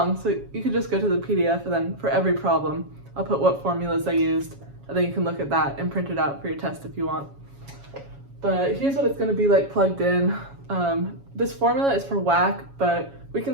so you could just go to the PDF, and then for every problem I'll put what formulas I used, and then you can look at that and print it out for your test if you want. But here's what it's going to be like plugged in. This formula is for WACC, but we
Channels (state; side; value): late; left; 7.2 ms